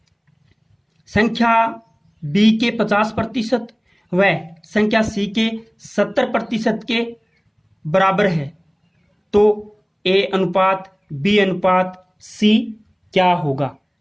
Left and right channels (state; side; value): identical; both; correlation 1.00